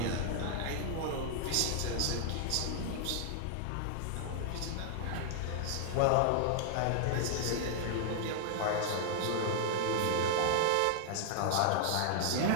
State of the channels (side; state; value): both; different; correlation -0.01